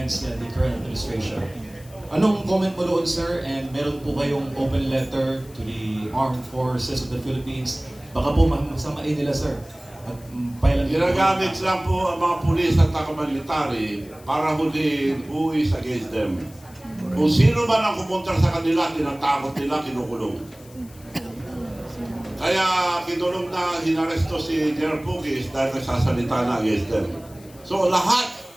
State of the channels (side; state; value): left; noise; hiss, 24 dB below the sound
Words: the current administration. Anong comment mo doon, sir? And meron po kayong open letter to the Armed Forces of the Philippines. Baka po masamain nila, sir. At Ginagamit lang po ang mga pulis at military para huliin who is against them. Kung sino man ang pumunta sa kanila, tinatakot nila, kinukulong. Kaya kinulong na hinaresto si General Pugis dahil nagsasalita na against them. So lahat,